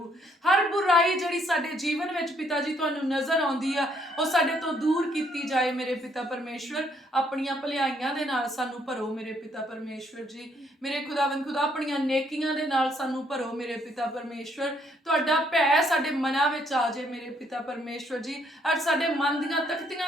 ਹਰ ਬੁਰਾਈ ਜਿਹੜੀ ਸਾਡੇ ਜੀਵਨ ਵਿੱਚ ਪਿਤਾ ਜੀ ਤੁਹਾਨੂੰ ਨਜ਼ਰ ਆਉਂਦੀ ਆ ਉਹ ਸਾਡੇ ਤੋਂ ਦੂਰ ਕੀਤੀ ਜਾਏ ਮੇਰੇ ਪਿਤਾ ਪਰਮੇਸ਼ਵਰ। ਆਪਣੀਆਂ ਭਲਾਈਆਂ ਦੇ ਨਾਲ ਸਾਨੂੰ ਭਰੋ ਮੇਰੇ ਪਿਤਾ ਪਰਮੇਸ਼ਵਰ ਜੀ। ਮੇਰੇ ਖੁਦਾਵੰਦ ਖੁਦਾ, ਆਪਣੀਆਂ ਨੇਕੀਆਂ ਦੇ ਨਾਲ ਸਾਨੂੰ ਭਰੋ ਮੇਰੇ ਪਿਤਾ ਪਰਮੇਸ਼ਵਰ। ਤੁਹਾਡਾ ਭੈ ਸਾਡੇ ਮਨਾਂ ਵਿੱਚ ਆ ਜਾਏ ਮੇਰੇ ਪਿਤਾ ਪਰਮੇਸ਼ਵਰ ਜੀ, ਔਰ ਸਾਡੇ ਮਨ ਦੀਆਂ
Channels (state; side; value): normal; both; correlation 0.69